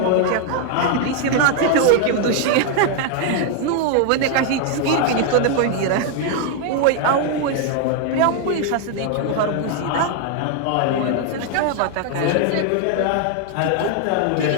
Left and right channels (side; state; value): both; different; correlation 0.00